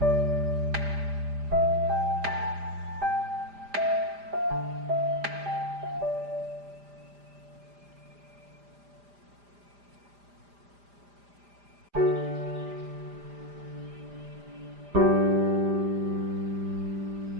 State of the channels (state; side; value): late; left; 5.0 ms